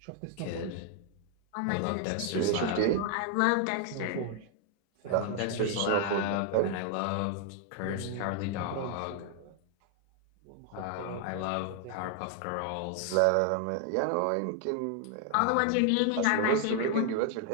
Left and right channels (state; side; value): different; both; correlation 0.00